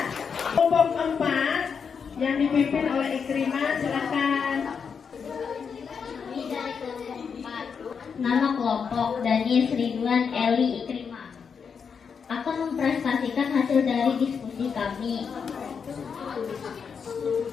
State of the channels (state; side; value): quieter; right; 6.3 dB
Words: Kelompok 4 yang dipimpin oleh Ikrimah, silakan. Kami dari kelompok 4. Nama kelompok Daniel Ridwan Eli Ikrimah. Akan mempresentasikan hasil dari diskusi kami.